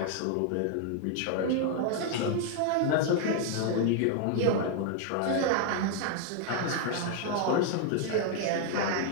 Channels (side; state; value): both; different; correlation 0.00